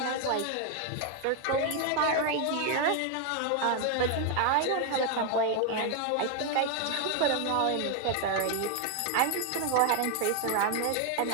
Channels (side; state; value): both; different; correlation 0.01